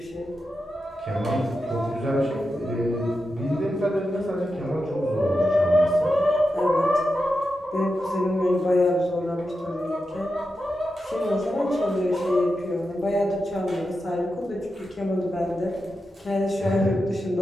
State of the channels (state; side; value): normal; both; correlation 0.89